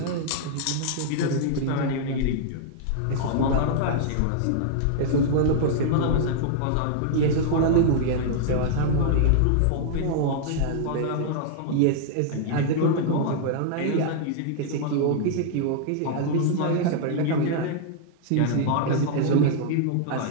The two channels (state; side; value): different; both; correlation -0.01